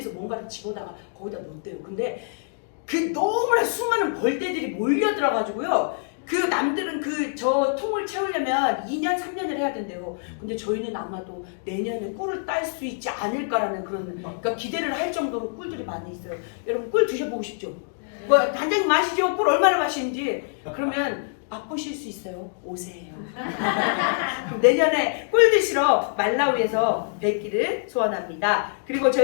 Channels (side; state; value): right; silent; digital silence